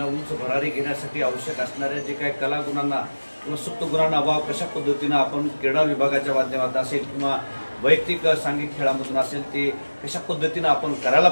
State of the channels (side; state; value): both; inverted; correlation -1.00